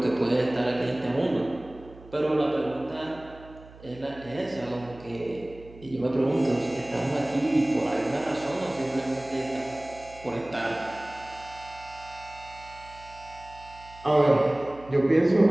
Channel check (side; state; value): right; noise; hum, 20 dB below the sound